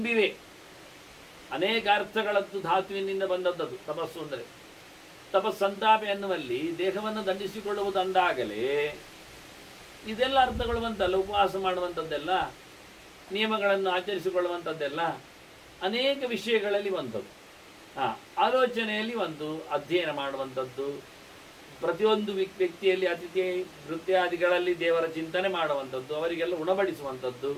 ಅನೇಕ ಅರ್ಥಗಳದ್ದು ಧಾತುವಿನಿಂದ ಬಂದದ್ದು ತಪಸ್ಸು ಅಂದರೆ. ತಪಸ್ಸಂತಾಪೆ ಅನ್ನುವಲ್ಲಿ ದೇಹವನ್ನು ದಂಡಿಸಿಕೊಳ್ಳುವುದಂದಾಗಲೇ ಇದೆಲ್ಲ ಅರ್ಥಗಳು ಬಂತಲ್ಲ. ಉಪವಾಸ ಮಾಡುವಂಥದ್ದೆಲ್ಲ, ನಿಯಮಗಳನ್ನು ಆಚರಿಸಿಕೊಳ್ಳುವಂಥದ್ದೆಲ್ಲ ಅನೇಕ ವಿಷಯಗಳಲ್ಲಿ ಬಂತದ್ದು. ಆಲೋಚನೆಯಲ್ಲಿ ಒಂದು ಅಧ್ಯಯನ ಮಾಡುವಂಥದ್ದು, ಪ್ರತಿಯೊಂದು ವ್ಯಕ್ತಿಯಲ್ಲಿ ಅತಿಥಿ ನೃತ್ಯಾದಿಗಳಲ್ಲಿ ದೇವರ ಚಿಂತನೆ ಮಾಡುವಂಥದ್ದು, ಅವರಿಗೆಲ್ಲ ಉಣಬಡಿಸುವಂಥದ್ದು.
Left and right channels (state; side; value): identical; both; correlation 1.00